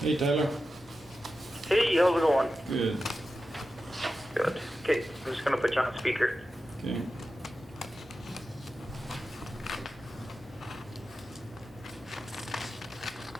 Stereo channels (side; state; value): both; normal; correlation 0.92